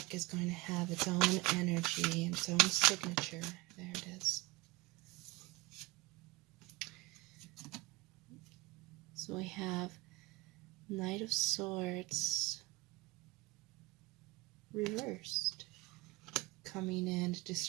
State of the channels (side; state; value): left; quieter; 22.3 dB